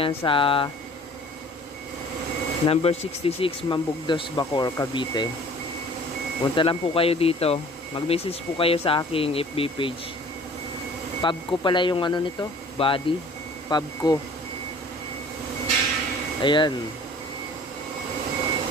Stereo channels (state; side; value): normal; both; correlation 0.49